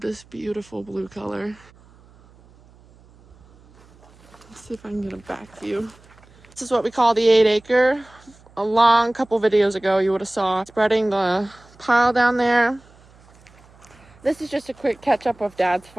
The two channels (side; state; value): right; noise; hum, 27 dB below the sound